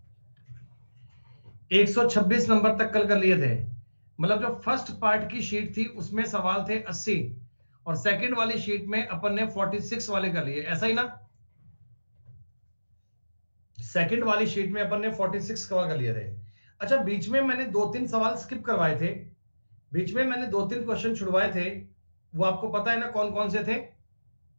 126 नंबर तक कल कर लिए थे। मतलब जो फर्स्ट पार्ट की शीट थी उसमें सवाल थे 80, और सेकंड वाली शीट में अपन ने 46 वाले कर लिए, ऐसा ही ना? सेकंड वाली शीट में अपन ने 46 कवर कर लिए थे। अच्छा, बीच में मैंने 2-3 सवाल स्किप करवाए थे, बीच में मैंने 2-3 क्वेश्चन छुड़वाए थे, वो आपको पता है ना कौन कौन से थे?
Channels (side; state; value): both; inverted; correlation -1.00